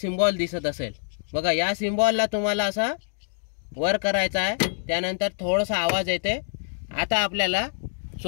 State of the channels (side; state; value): right; silent; digital silence